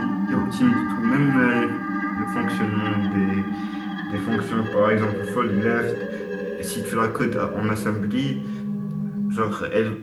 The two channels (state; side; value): identical; both; correlation 1.00